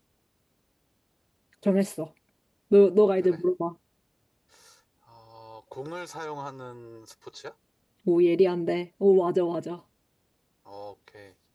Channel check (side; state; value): both; identical; correlation 1.00